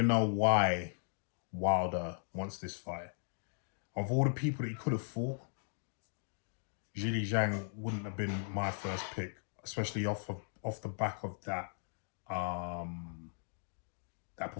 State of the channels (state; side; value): silent; right; digital silence